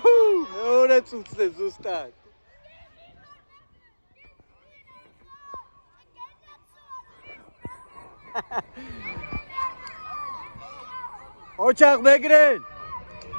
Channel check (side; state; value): both; inverted; correlation -1.00